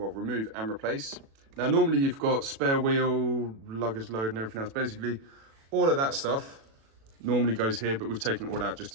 and replace. Now, normally you've got spare wheel, luggage load and everything else. Basically, all of that stuff normally goes here, but we've taken it all out just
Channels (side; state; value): left; late; 36 ms